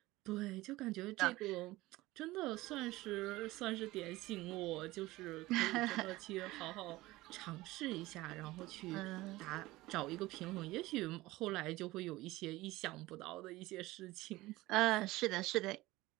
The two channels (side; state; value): left; quieter; 18.8 dB